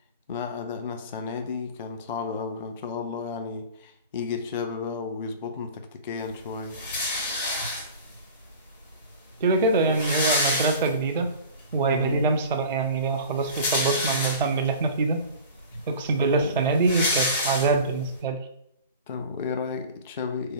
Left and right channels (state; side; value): inverted; both; correlation -0.39